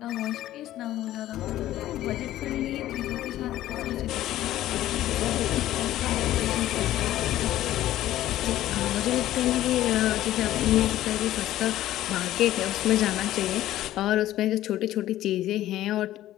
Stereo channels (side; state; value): right; quieter; 14.0 dB